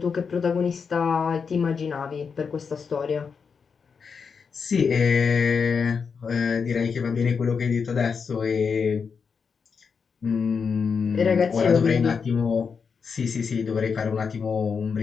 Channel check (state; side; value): quieter; right; 5.8 dB